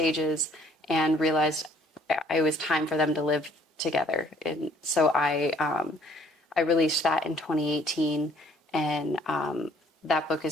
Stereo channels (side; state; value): both; normal; correlation 0.60